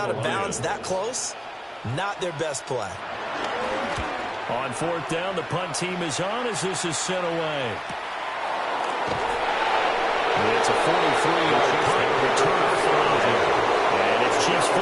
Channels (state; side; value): identical; both; correlation 1.00